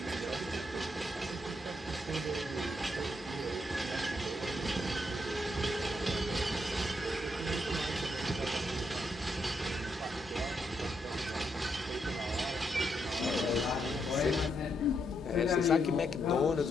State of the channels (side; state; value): both; normal; correlation 0.79